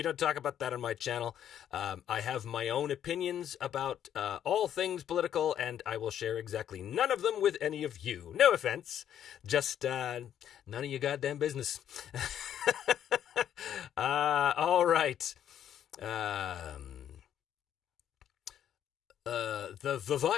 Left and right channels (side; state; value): right; quieter; 10.0 dB